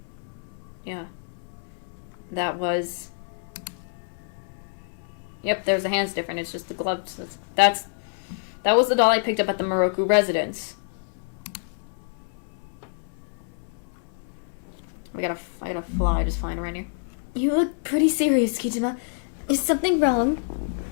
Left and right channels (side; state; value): right; silent; 60 dB below the other